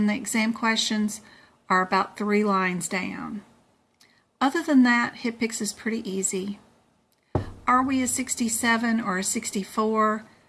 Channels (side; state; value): both; identical; correlation 1.00